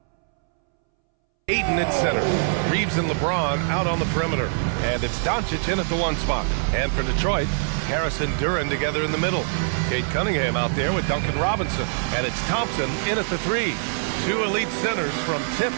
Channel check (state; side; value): silent; left; 63 dB below the other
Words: Ayton at center. Reeves and LeBron out on the perimeter. And it's Doncic in at the 1 spot. And for Detroit, Harris and Duren together in the middle. Kate Cunningham out there with Duncan Robinson. And it's Thompson in at the 3. 2 elite centers from